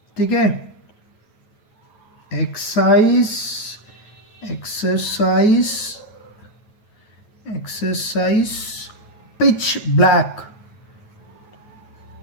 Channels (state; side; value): late; right; 9.3 ms